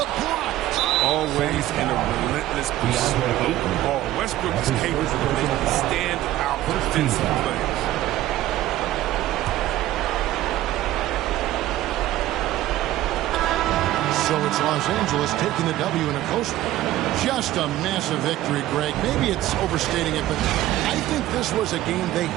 block. Always in a relentless pursuit of the ball. Westbrook is capable of making stand-out defensive plays. So it's Los Angeles taking the W in a close one. Just a massive victory, Greg. Maybe it's overstating it, but I think this was a game they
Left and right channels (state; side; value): quieter; left; 14.6 dB